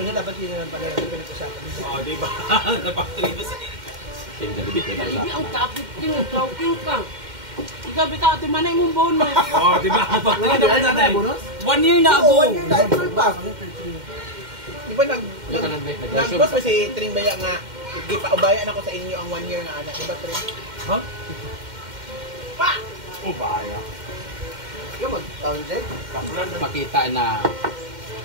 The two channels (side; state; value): left; late; 2.1 ms